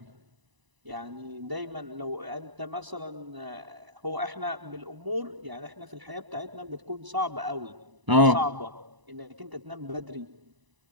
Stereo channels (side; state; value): left; late; 1.0 ms